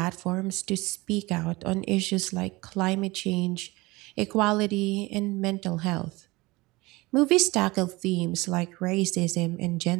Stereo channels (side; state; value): left; quieter; 22.1 dB